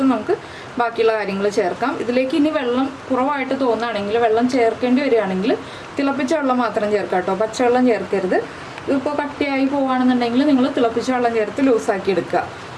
നമുക്ക് ബാക്കിയുള്ള കാര്യങ്ങൾ ചേർക്കാം. ഇതിലേക്ക് ഇനി വെള്ളം കുറവായിട്ട് തോന്നുകയാണെങ്കിൽ, വെള്ളം ചേർക്കേണ്ടി വരികയാണെങ്കിൽ തിളപ്പിച്ച വെള്ളം മാത്രം ചേർക്കാം കേട്ടോ. പച്ചവെള്ളം ചേർക്കരുത്. ഇതിപ്പോൾ കട്ടിയായി പോവുകയാണെന്നുണ്ടെങ്കിൽ നിങ്ങൾ തിളപ്പിച്ച വെള്ളം ചേർത്ത് ലൂസാക്കി എടുക്കുക.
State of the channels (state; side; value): identical; both; correlation 1.00